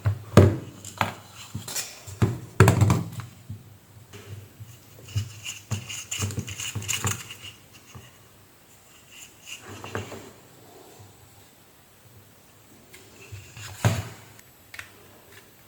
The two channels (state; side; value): identical; both; correlation 1.00